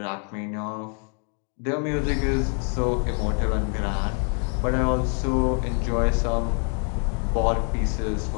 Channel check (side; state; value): right; quieter; 39.5 dB